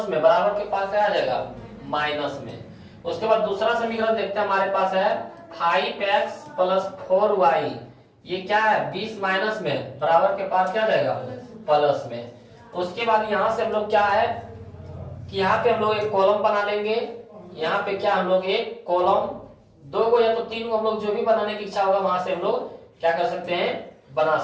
में बराबर के पास क्या आ जाएगा? माइनस में। उसके बाद दूसरा समीकरण देखते हैं, हमारे पास है 5x + 4y। ये क्या है? 20 माइनस में बराबर के पास क्या आ जाएगा? प्लस में। उसके बाद यहाँ से हम लोग क्या है कि यहाँ पे हम लोग एक कॉलम बना लेंगे। यहाँ पे क्या हम लोग एक कॉलम, 2 को या तो 3 को हम लोग जो भी बनाने की इच्छा होगा वहां से हम लोग क्या कर सकते हैं? बना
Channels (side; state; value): both; identical; correlation 1.00